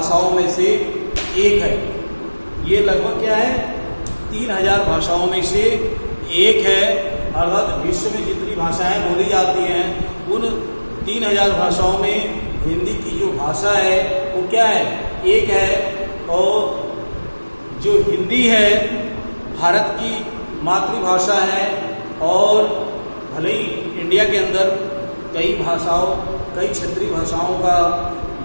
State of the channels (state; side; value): inverted; both; correlation -1.00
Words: में से एक है। ये लगभग क्या है, 3000 भाषाओं में से एक है। अर्थात विश्व में जितनी भाषाएं बोली जाती हैं, उन 3000 भाषाओं में हिंदी की जो भाषा है वो क्या है, एक है। और जो हिंदी है भारत की मातृभाषा है और भले ही इंडिया के अंदर कई क्षेत्रीय भाषाओं का